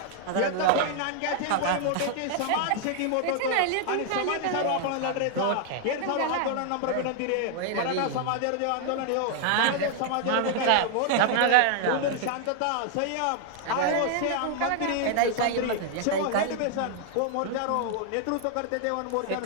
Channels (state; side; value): different; both; correlation 0.00